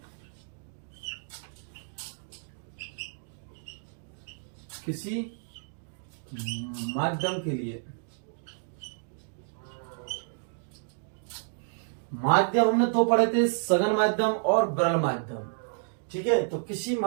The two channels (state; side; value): silent; left; digital silence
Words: किसी माध्यम के लिए, माध्यम हमने दो पढ़े थे, सघन माध्यम और विरल माध्यम। ठीक है, तो किसी